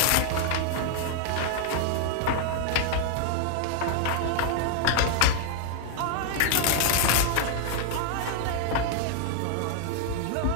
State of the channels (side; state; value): both; different; correlation 0.00